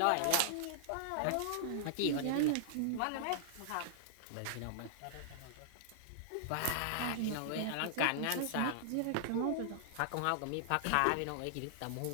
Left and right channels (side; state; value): both; different; correlation -0.01